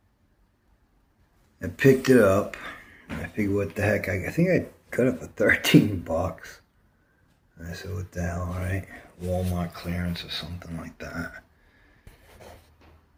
I picked it up. I figured, what the heck? I think I got it for 13 bucks. I said, what the hell, right? Walmart clearance or something like that.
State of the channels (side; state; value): both; identical; correlation 1.00